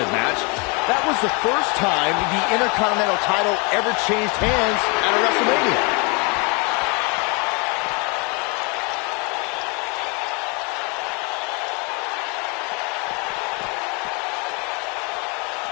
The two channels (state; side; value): quieter; right; 31.5 dB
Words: match. That was the first time the Intercontinental title ever changed hands at a WrestleMania.